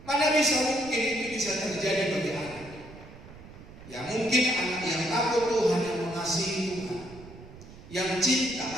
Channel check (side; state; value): right; noise; rumble, 17 dB below the sound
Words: Mana bisa mungkin itu bisa terjadi bagi anak? Ya mungkin anak yang takut Tuhan, yang mengasihi Tuhan, yang cinta